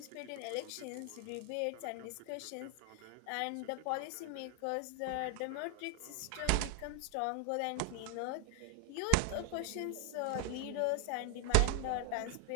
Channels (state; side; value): different; both; correlation 0.00